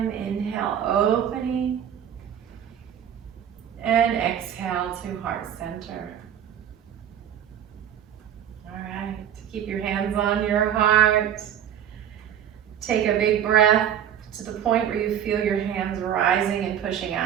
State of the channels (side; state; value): left; quieter; 9.7 dB